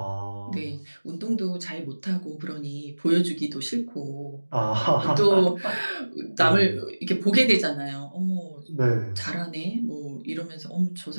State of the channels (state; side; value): inverted; both; correlation -1.00